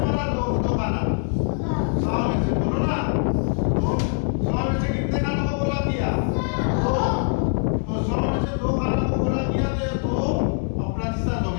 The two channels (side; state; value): right; silent; 63 dB below the other